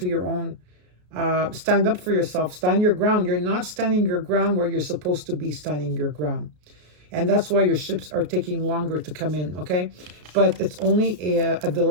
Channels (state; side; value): late; left; 33 ms